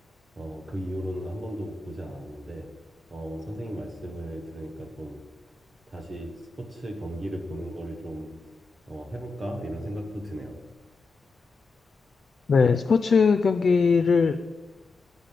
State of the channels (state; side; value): quieter; right; 4.2 dB